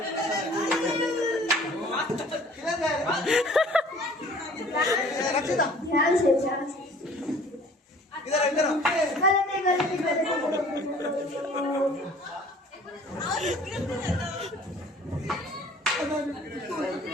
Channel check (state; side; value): normal; both; correlation 0.51